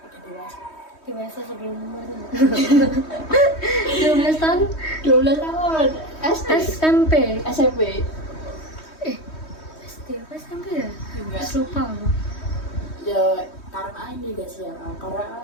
Udah Dewasa sebelum umurnya. 12 tahun 12 tahun. SMP. SMP. SD apa SMP ya? Enggak. Terus lupa aku. Ya karena ini guys ya,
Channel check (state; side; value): late; right; 3.2 ms